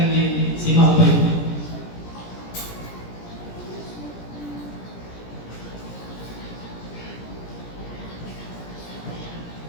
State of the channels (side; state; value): right; late; 17 ms